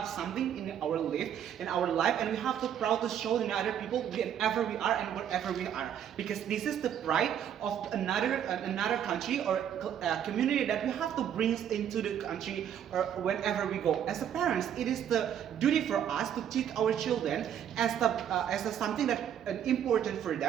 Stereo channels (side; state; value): left; quieter; 9.4 dB